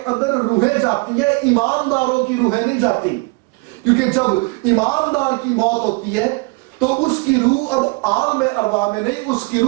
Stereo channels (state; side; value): quieter; left; 28.3 dB